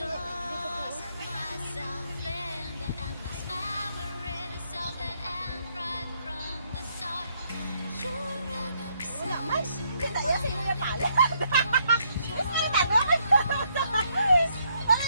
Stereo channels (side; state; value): both; inverted; correlation -0.73